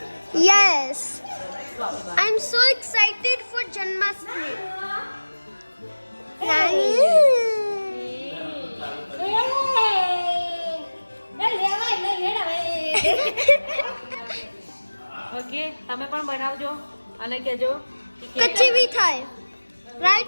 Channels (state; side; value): inverted; both; correlation -1.00